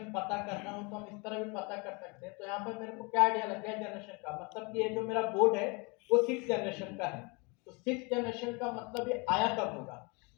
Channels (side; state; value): right; quieter; 29.8 dB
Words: पता करना हो तो हम इस तरह भी पता कर सकते हैं। तो यहाँ पे मेरे को क्या आइडिया लग गया जनरेशन का, मतलब कि ये जो मेरा बोर्ड है वो 6 जनरेशन का है। तो 6 जनरेशन का मतलब ये आया कब होगा,